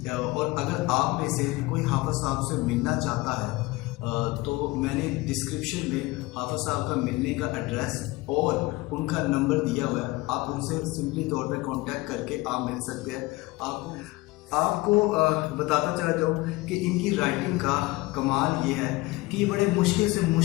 और अगर आप में से कोई हाफिज़ साहब से मिलना चाहता है तो मैंने डिस्क्रिप्शन में हाफिज़ साहब का मिलने का एड्रेस और उनका नंबर दिया हुआ है। आप उनसे सिंपली तौर पे कांटेक्ट करके आप मिल सकते हैं। आपको बताता चला जाऊँ कि इनकी राइटिंग का कमाल ये है कि ये बड़े मुश्किल से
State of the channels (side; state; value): right; quieter; 21.1 dB